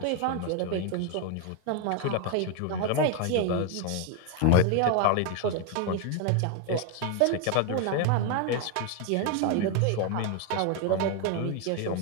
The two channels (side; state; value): both; different; correlation 0.01